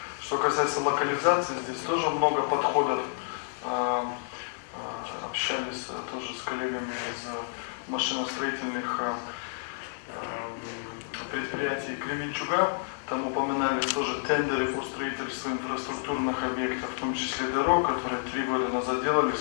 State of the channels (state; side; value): silent; right; digital silence